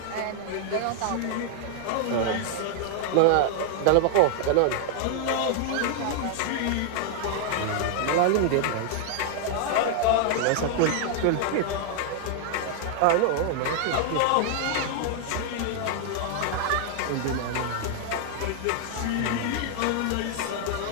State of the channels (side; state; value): both; different; correlation 0.00